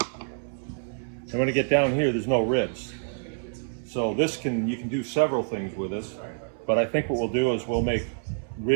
And when I get down here, there's no ribs. So you can do several things with this, but I think what we'll do is we'll make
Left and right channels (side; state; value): left; silent; 60 dB below the other